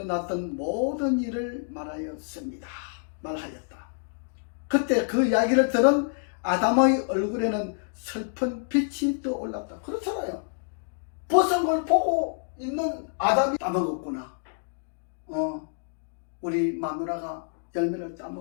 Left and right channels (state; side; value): silent; right; digital silence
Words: 모든 일을 말하였다. 그때 그 이야기를 들은 아담의 얼굴에는 슬픈 빛이 떠올랐다. 그렇잖아요. 벗은 걸 보고 있는 아담이 따먹었구나. 우리 마누라가 열매를